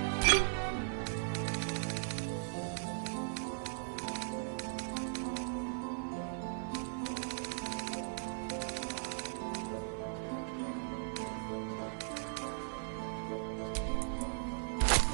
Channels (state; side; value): silent; left; 52 dB below the other